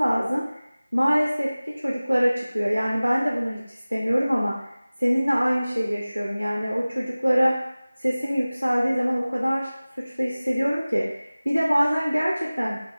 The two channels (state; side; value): inverted; both; correlation -0.98